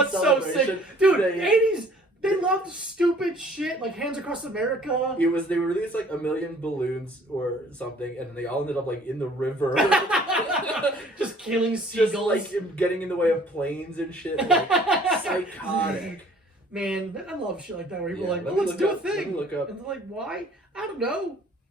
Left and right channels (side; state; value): both; normal; correlation 0.55